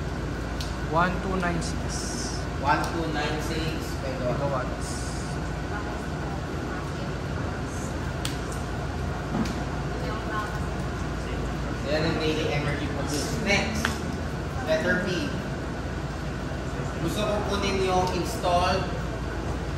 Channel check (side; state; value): both; identical; correlation 1.00